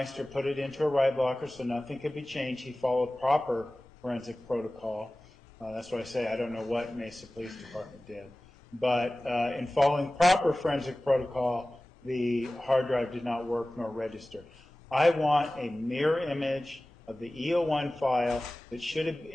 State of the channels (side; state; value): both; normal; correlation 0.97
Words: put it into a write blocker so nothing could be changed. He followed proper forensic protocol. That's why I say I don't know what Mesa Police Department did. But in following proper forensic protocol, the hard drive did not work nor register. I want a mirror image of the E01 file